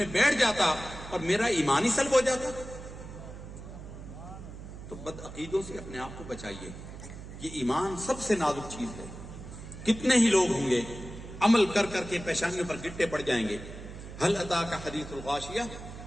بیٹھ جاتا اور میرا ایمان ہی سلب ہو جاتا. تو بد عقیدوں سے اپنے آپ کو بچائیے. یہ ایمان سب سے نازک چیز ہے. کتنے ہی لوگ ہوں گے عمل کر کر کے پیشانیوں پر گٹے پڑ جائیں گے. هل اتاک حدیث الغاشیہ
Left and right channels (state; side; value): noise; right; hum, 12 dB below the sound